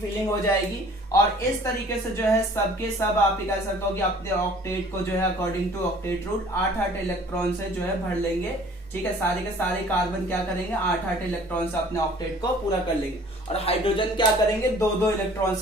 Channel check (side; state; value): both; normal; correlation 0.51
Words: हो जाएगी। और इस तरीके से जो है सबके सब आप कह सकते हो कि अपने ऑक्टेट को जो है according to octet rule 8-8 electron से जो है भर लेंगे। ठीक है, सारे के सारे कार्बन क्या करेंगे, 8-8 इलेक्ट्रॉन से अपने ऑक्टेट को पूरा कर लेंगे, और हाइड्रोजन क्या करेंगे, 2-2 इलेक्ट्रॉन